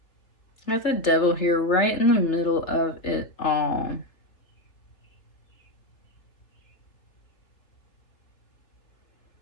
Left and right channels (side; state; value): right; late; 3.0 ms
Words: You got the Devil here right in the middle of it all.